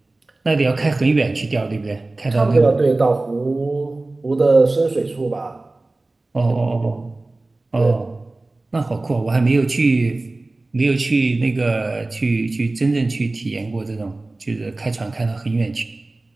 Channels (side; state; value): left; quieter; 3.0 dB